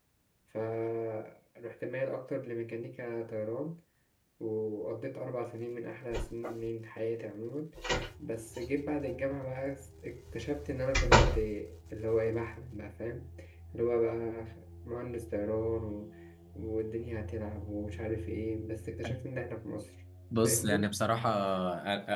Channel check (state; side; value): identical; both; correlation 1.00